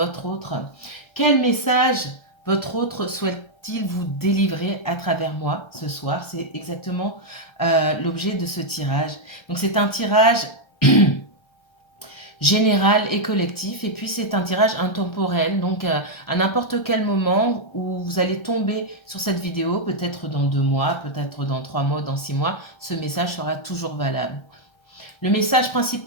autre. Quel message votre autre souhaite-t-il vous délivrer à travers moi ce soir? C'est exactement l'objet de ce tirage. Donc c'est un tirage général et collectif, et puis c'est un tirage intemporel, donc à n'importe quel moment où vous allez tomber sur cette vidéo, peut-être dans 2 mois, peut-être dans 3 mois, dans 6 mois, ce message sera toujours valable. Le message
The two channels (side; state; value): right; late; 1.3 ms